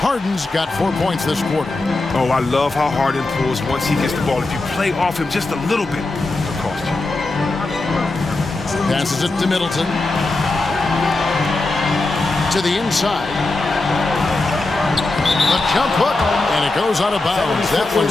Harden's got 4 points this quarter. Oh, I love how Harden pulls once he gets the ball. If you play off him just a little bit, it'll cost you. Passes it to Middleton. To the inside. The jump hook, and it goes out of bounds. That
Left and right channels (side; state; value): right; quieter; 3.1 dB